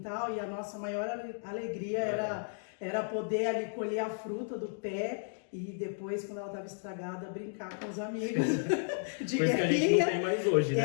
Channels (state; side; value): silent; right; digital silence